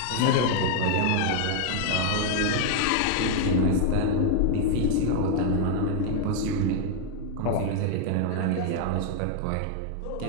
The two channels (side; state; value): both; different; correlation 0.00